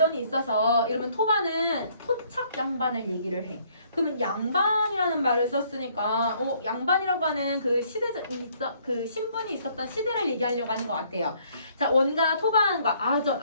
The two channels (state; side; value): inverted; both; correlation -0.64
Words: 있어서 이러면 토반은 토착 양반을 얘기를 해. 그러면 양반이라는 말을 썼으니까 양반이라고 하는 그 그 신분이 있었던 시대를 얘기하려고 하는 것 같아요. 자, 원과 토반과